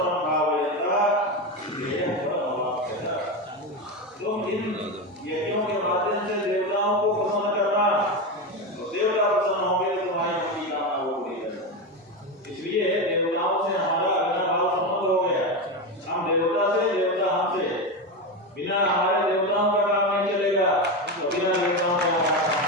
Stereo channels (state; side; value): normal; both; correlation 0.16